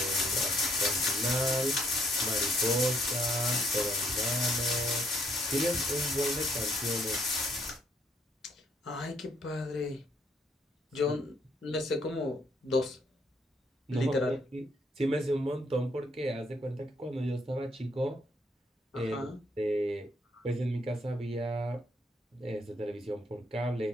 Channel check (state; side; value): normal; both; correlation 0.69